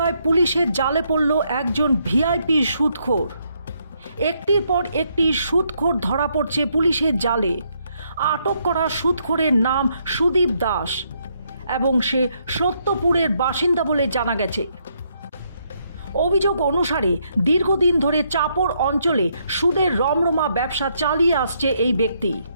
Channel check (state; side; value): inverted; both; correlation -0.74